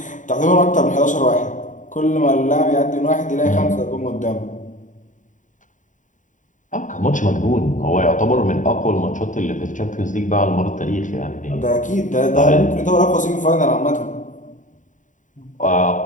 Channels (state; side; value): late; right; 0.37 ms